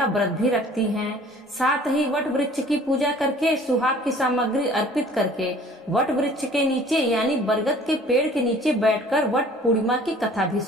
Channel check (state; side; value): normal; both; correlation 0.51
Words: व्रत भी रखती हैं। साथ ही वट वृक्ष की पूजा करके, सुहाग की सामग्री अर्पित करके वट वृक्ष के नीचे यानी बरगद के पेड़ के नीचे बैठकर वट पूर्णिमा की कथा भी